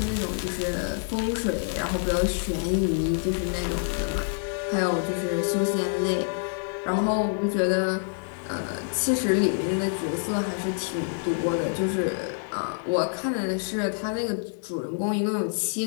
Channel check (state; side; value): silent; right; 60 dB below the other